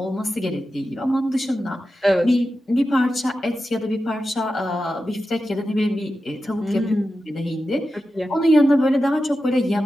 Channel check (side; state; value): both; normal; correlation 0.91